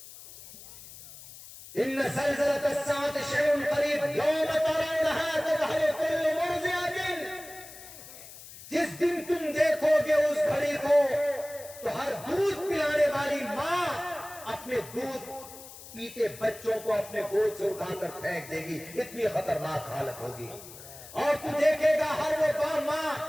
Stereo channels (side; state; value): left; noise; hiss, 16 dB below the sound